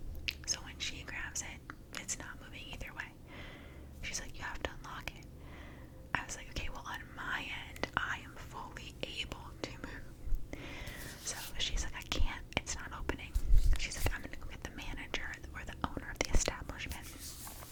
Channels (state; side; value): identical; both; correlation 1.00